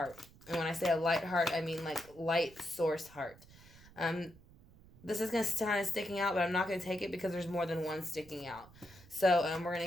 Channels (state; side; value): noise; right; rumble, 23 dB below the sound